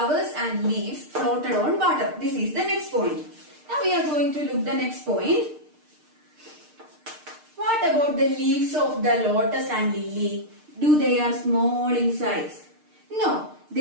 and leaves floated on water. This is the next point. Now we are going to look the next point. What about the leaves of the lotus and lily? Do they are small in size? No,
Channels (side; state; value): left; late; 6.6 ms